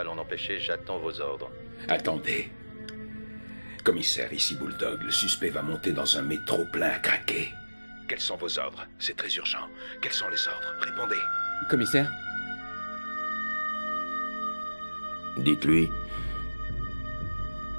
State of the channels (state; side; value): inverted; both; correlation -1.00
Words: l'en empêcher? J'attends vos ordres. Attendez. Commissaire, ici Bulldog. Le suspect va monter dans un métro plein à craquer. Quels sont vos ordres? C'est très urgent. Quels sont les ordres? Répondez. Commissaire? Dites-lui